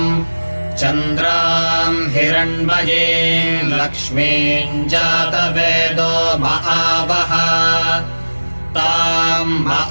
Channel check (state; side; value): inverted; both; correlation -1.00